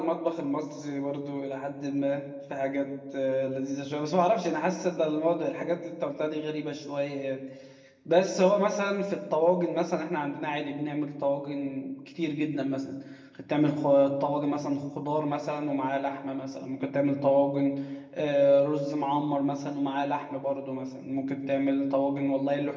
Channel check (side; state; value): both; identical; correlation 1.00